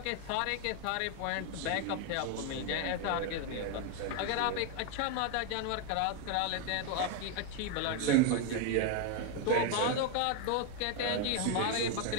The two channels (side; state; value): both; different; correlation 0.01